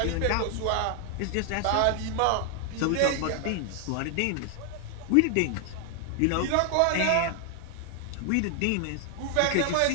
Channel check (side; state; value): both; different; correlation 0.00